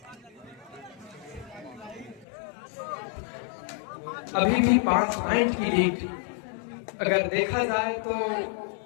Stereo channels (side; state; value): right; drops out; at 2.2 s